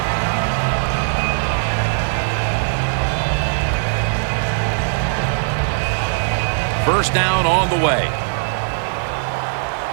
First down on the way.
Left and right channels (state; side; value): silent; left; 65 dB below the other